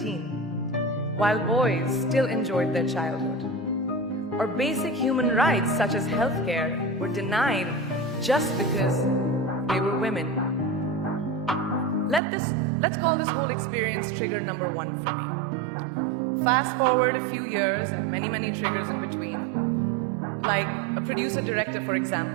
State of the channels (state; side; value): drops out; left; at 12.2 s